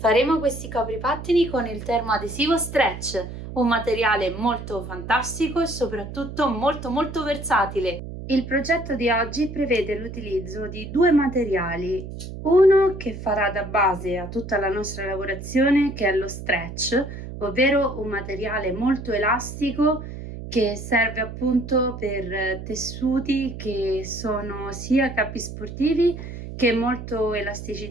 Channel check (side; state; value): right; noise; hum, 10 dB below the sound